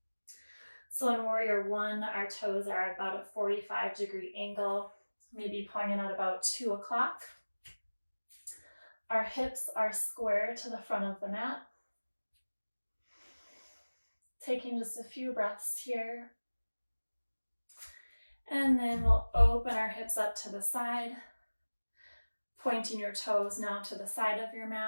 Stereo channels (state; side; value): inverted; both; correlation -1.00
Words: So in Warrior One, our toes are at about a 45-degree angle, maybe pointing at about 2 o'clock. Our hips are square to the front of the mat. Taking just a few breaths here. And then we'll open our hips up to the side, pointing your toes now to the side of your